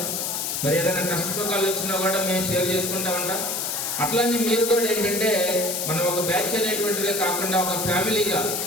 మరి ఏదైనా కష్ట సుఖాలు వచ్చినా కూడా మేము షేర్ చేసుకుంటూ ఉంటాం. అట్లానే మీరు కూడా ఏంటంటే మనం ఒక బ్యాచ్ అనేటువంటిదే కాకుండా ఒక ఫ్యామిలీగా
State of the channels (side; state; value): left; noise; hiss, 1 dB below the sound